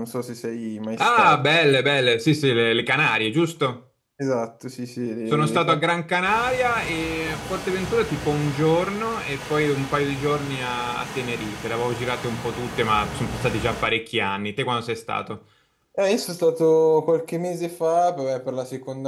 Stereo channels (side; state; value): both; identical; correlation 1.00